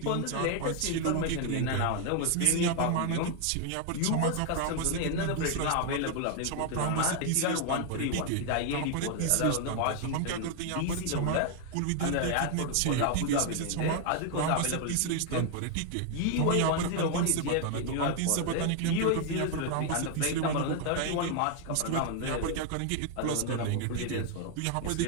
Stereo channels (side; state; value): both; different; correlation 0.00